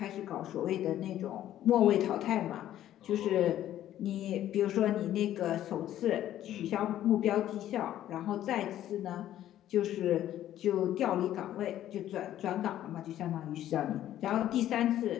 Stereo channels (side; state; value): right; quieter; 12.4 dB